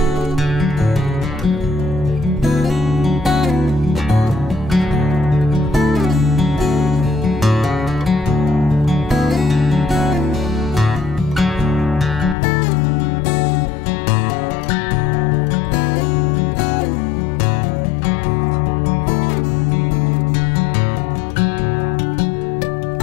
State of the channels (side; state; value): right; drops out; at 12.4 s